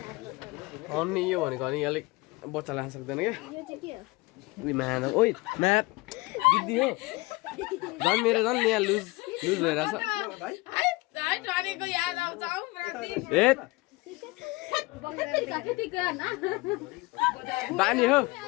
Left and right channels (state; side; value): quieter; right; 23.2 dB